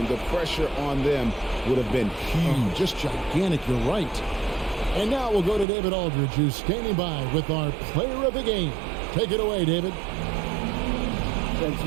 the pressure on them would have been huge. Just gigantic, you're right. And now we'll go to David Aldridge, who's standing by with our player of the game. Take it away, David. Thanks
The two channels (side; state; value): left; drops out; at 5.7 s